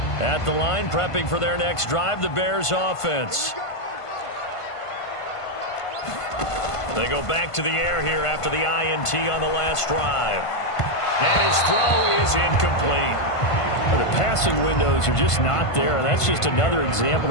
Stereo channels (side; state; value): right; late; 1.5 ms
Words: At the line, prepping for their next drive, the Bears offense. They go back to the air here after the INT on the last drive. And his throw is incomplete. The passing windows are just not there, and that's just another example